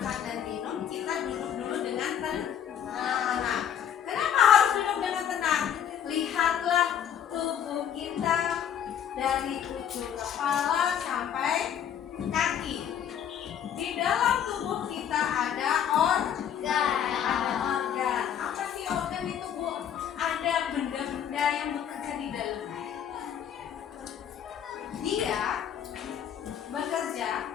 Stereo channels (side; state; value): right; quieter; 9.2 dB